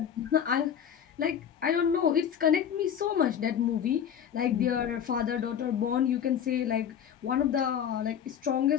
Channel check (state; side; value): quieter; right; 8.8 dB